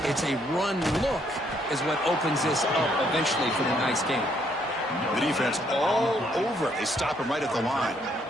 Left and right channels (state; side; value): normal; both; correlation 0.70